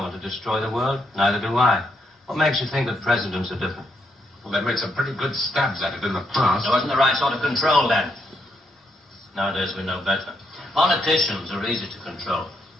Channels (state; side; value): normal; both; correlation 0.77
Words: want to destroy the world. Neither do I. What makes you think that presidents are different? Well, they've made some pretty good stabs at it in the past. There wasn't the right sort of control then. Nowadays we know better. Politicians are easy to control.